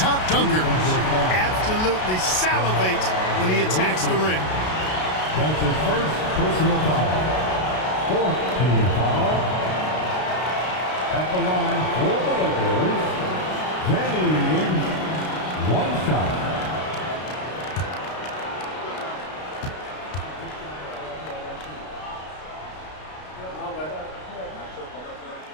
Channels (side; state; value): right; late; 32 ms